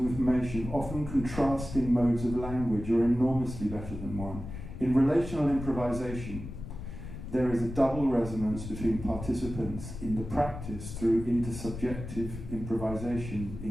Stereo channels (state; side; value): noise; left; rumble, 9 dB below the sound